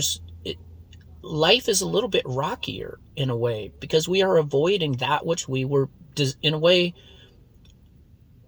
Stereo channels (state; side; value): identical; both; correlation 1.00